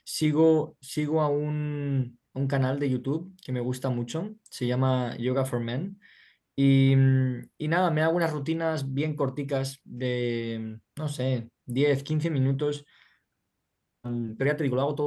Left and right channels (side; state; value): both; identical; correlation 1.00